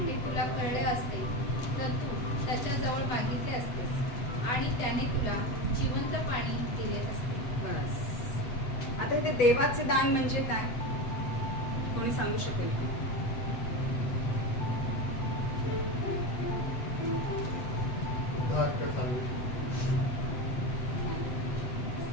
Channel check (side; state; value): right; late; 8.0 ms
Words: हे तुला कळले असते तर तू त्याच्याजवळ मागितले असतेस आणि त्याने तुला जिवंत पाणी दिले असते. बस. आता इथे देवाचे दान म्हणजे काय, कोणी सांगू शकेल?